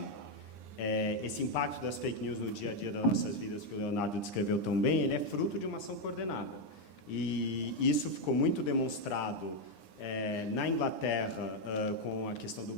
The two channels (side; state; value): right; late; 9.8 ms